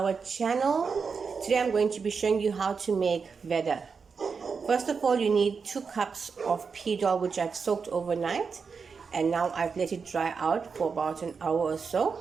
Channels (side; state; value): left; quieter; 5.4 dB